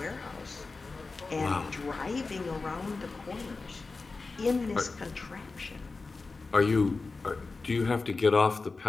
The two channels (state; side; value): quieter; right; 3.9 dB